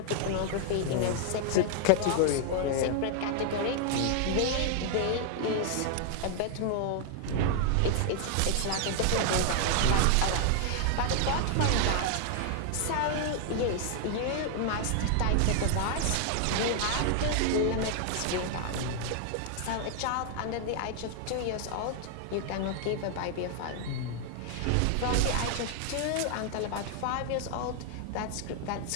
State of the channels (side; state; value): both; different; correlation 0.00